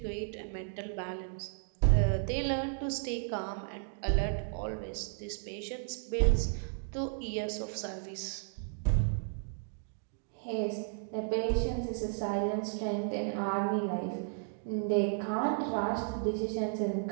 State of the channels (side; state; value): left; silent; 55 dB below the other